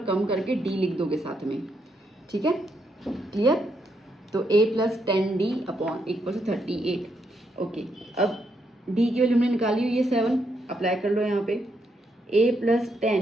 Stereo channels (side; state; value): both; normal; correlation 0.78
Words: कम करके D लिख दोगे साथ में। ठीक है, क्लियर? तो A + 10D upon equal to 38। Okay, अब D की वैल्यू हमने निकाली हुई है 7, अप्लाई कर लो यहाँ पे। A +